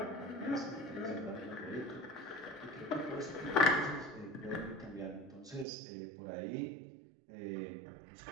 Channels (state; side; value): drops out; left; at 5.7 s